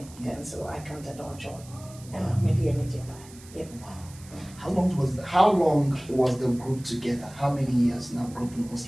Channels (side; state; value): right; noise; hiss, 21 dB below the sound